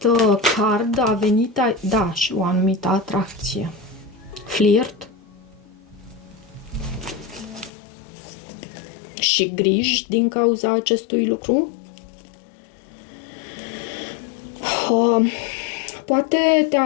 card a venit, da, și o anumită atracție. Flirt și griji din cauza acestui lucru. Poate te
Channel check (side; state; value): right; drops out; at 7.7 s